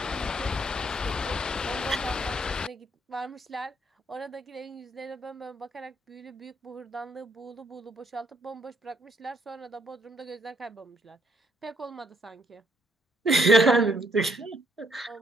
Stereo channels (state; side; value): normal; both; correlation 0.70